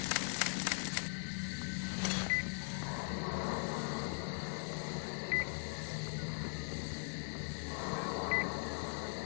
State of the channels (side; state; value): right; silent; 51 dB below the other